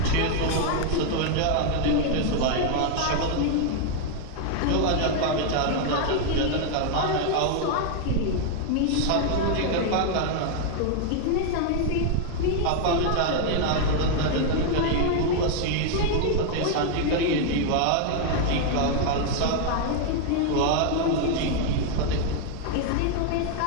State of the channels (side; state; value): both; different; correlation 0.00